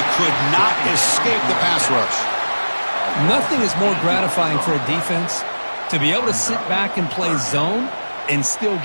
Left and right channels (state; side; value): inverted; both; correlation -1.00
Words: could not escape the pass rush. Nothing is more gratifying for a defense to be able to sit back and play zone and still